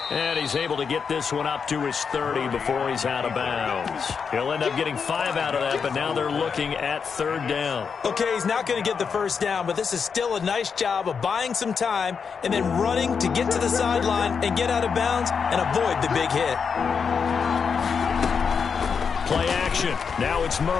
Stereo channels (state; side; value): quieter; right; 6.1 dB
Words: and he's able to get this one up to his 30 before he's out of bounds. He'll end up getting 5 out of that, but now they're looking at 3rd down. Okay, he's not going to get the first down, but this is still a nice job of buying some time and then running to get to the sideline and get out of bounds and avoid the big hit. Play action. Now it's